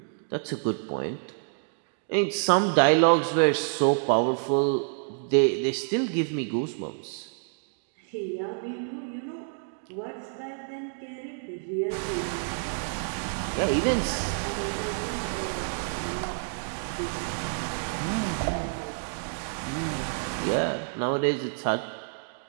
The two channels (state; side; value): silent; left; digital silence